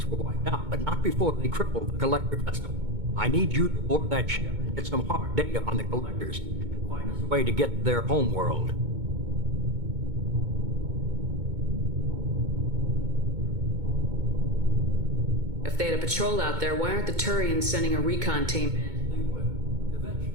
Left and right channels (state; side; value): late; left; 2.2 ms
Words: were wiped out, but not before they crippled the collector vessel. I need you to board that ship and get some hard data on the collectors. Find us a way to get to their homeworld. If they had a patrol out there, why aren't the Turians sending a recon team in? They will, eventually.